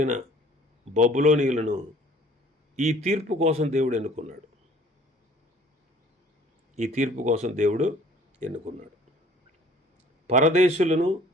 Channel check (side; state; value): both; normal; correlation 0.54